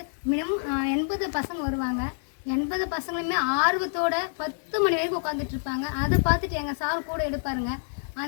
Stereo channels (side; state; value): right; silent; 60 dB below the other